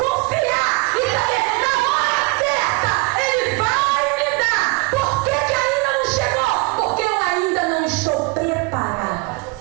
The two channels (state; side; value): quieter; left; 24.7 dB